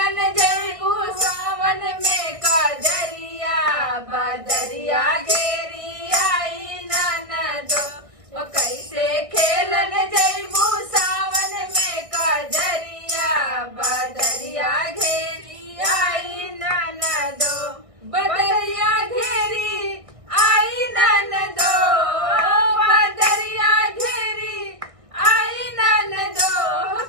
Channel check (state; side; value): late; left; 1.6 ms